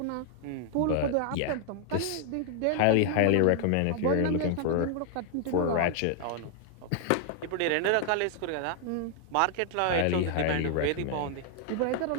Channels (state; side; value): different; both; correlation 0.00